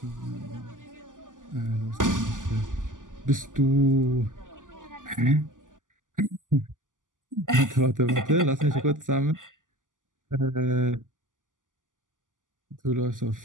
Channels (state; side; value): late; left; 0.88 ms